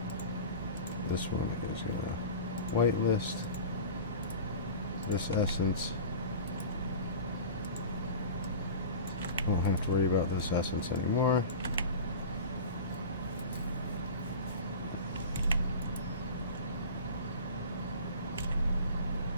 This one is going to whitelist. This essence. Won't have to worry about this essence anymore.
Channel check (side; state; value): both; inverted; correlation -0.35